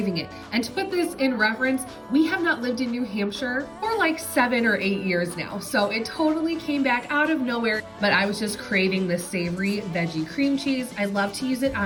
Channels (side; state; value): both; identical; correlation 1.00